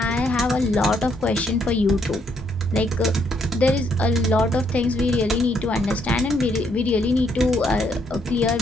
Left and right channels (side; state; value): both; normal; correlation 0.72